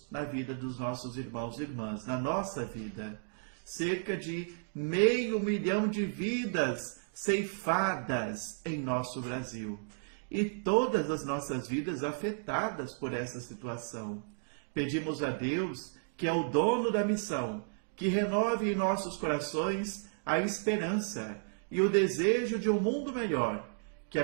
na vida dos nossos irmãos e irmãs, na nossa vida. Cerca de 500 mil de vidas ceifadas em nosso Brasil. E todas as nossas vidas afetadas por essa situação. Pedimos a Deus, que é o dono da missão, que renove em nossos corações a esperança e o desejo de um mundo melhor, que a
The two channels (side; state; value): left; silent; digital silence